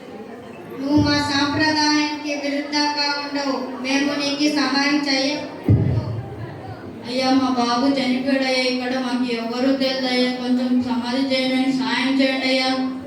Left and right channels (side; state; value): both; identical; correlation 1.00